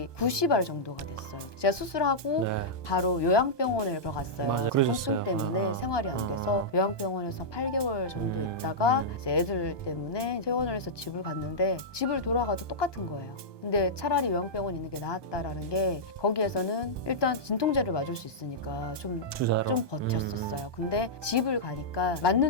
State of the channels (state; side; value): late; right; 1.2 ms